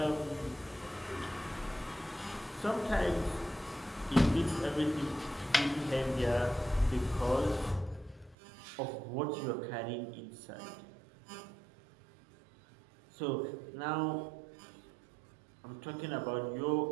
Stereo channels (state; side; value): drops out; left; at 8.3 s